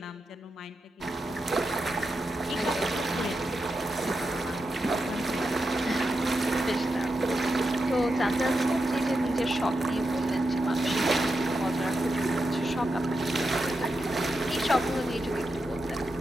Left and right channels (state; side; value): normal; both; correlation 0.87